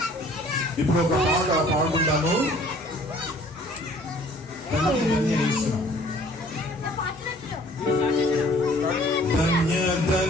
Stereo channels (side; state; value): both; normal; correlation 0.54